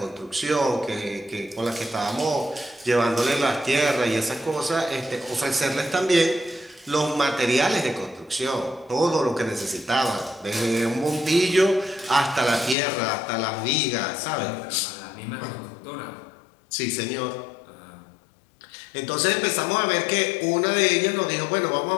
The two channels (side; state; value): right; drops out; at 12.8 s